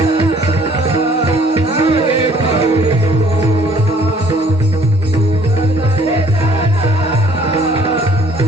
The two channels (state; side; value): normal; both; correlation 0.58